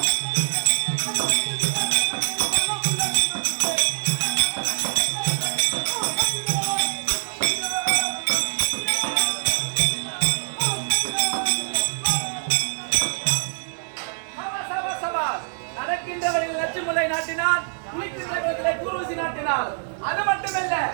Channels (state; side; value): silent; left; 62 dB below the other